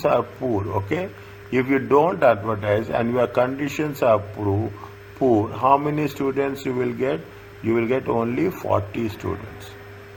are poor, okay? If you don't advertise and your conditions are poor, how many students you will get? You will get only 40 students.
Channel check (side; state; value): both; identical; correlation 1.00